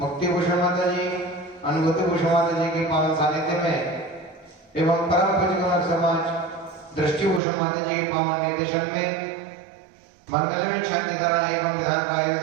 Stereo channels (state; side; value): drops out; left; at 7.4 s